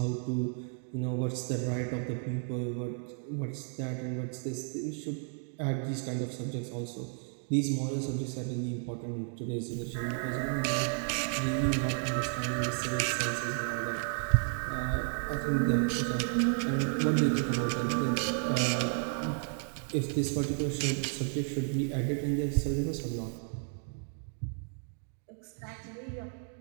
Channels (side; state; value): left; silent; 56 dB below the other